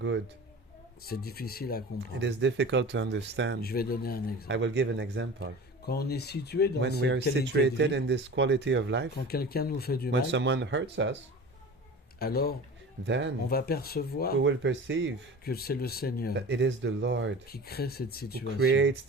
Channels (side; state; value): both; normal; correlation 0.36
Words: C'est difficile à It comprendre. is difficult to understand. Je vais donner un I exemple. will give an example. Quand on est situé dans When we are cette qualité de situated vie, in this quality of life, quand quelqu'un nous fait du when mal, someone hurts us, alors on then va percevoir we will perceive que c'est le Seigneur that it is the Lord qui crée cette who situation. creates